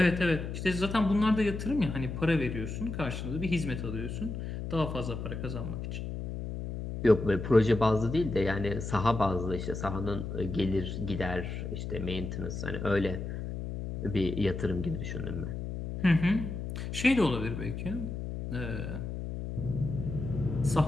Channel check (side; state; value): left; noise; hum, 5 dB below the sound